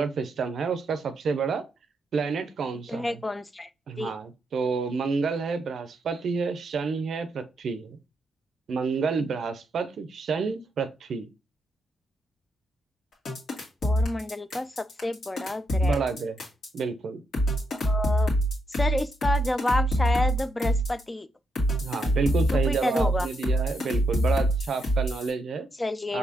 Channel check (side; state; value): both; normal; correlation 0.80